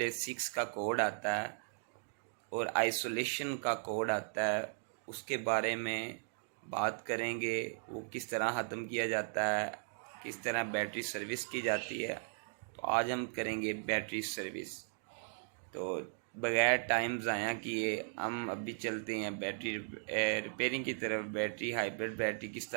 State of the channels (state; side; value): silent; left; digital silence